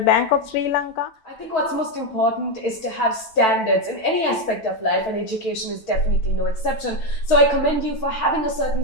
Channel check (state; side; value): late; right; 9.1 ms